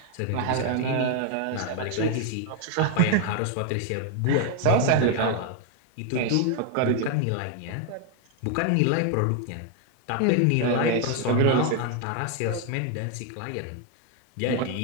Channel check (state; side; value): different; both; correlation 0.01